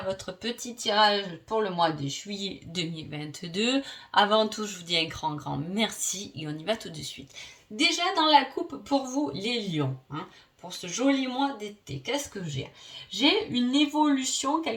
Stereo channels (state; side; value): identical; both; correlation 1.00